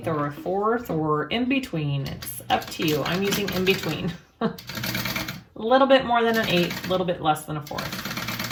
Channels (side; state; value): both; identical; correlation 1.00